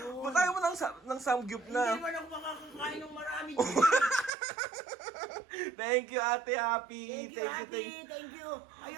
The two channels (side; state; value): left; drops out; at 4.3 s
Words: Ba't ayaw mo ng samgyup Hindi na? naman ako makakakain ng marami. Thank you, Ate Happy. Thank you, Happy. Thank you.